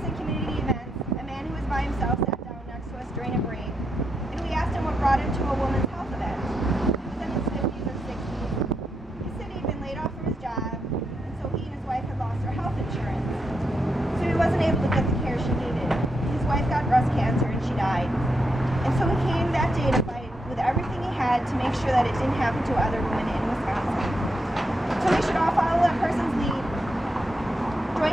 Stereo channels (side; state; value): both; normal; correlation 0.82